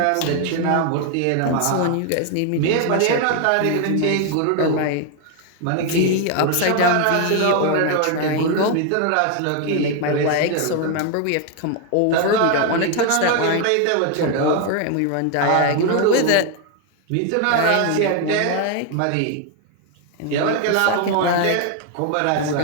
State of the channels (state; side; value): different; both; correlation 0.00